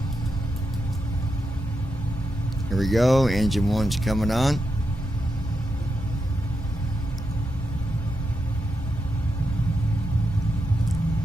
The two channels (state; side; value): normal; both; correlation 0.86